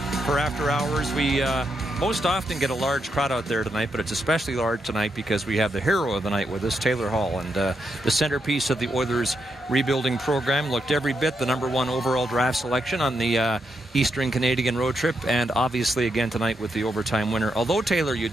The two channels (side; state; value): both; normal; correlation 0.82